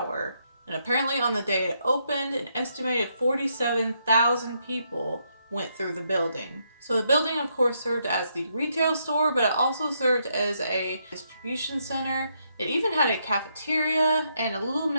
And apparently on the day it opened, an estimated 47,000 people went through the building. So the building, of course, served as the retail store, but it also served as a distribution center. It even had a cafeteria and a little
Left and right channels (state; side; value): inverted; both; correlation -0.77